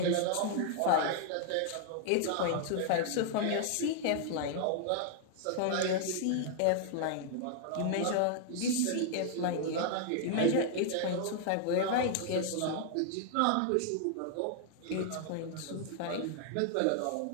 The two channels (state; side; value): different; both; correlation -0.01